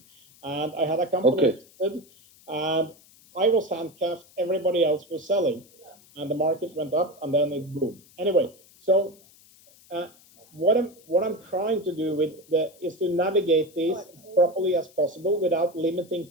and I had a company listed, and I was handcuffed, everybody else was selling, and the market went up, and then it boomed. Anyway, so what I'm trying to do is to navigate this as properly as possible without limiting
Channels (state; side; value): noise; left; hiss, 27 dB below the sound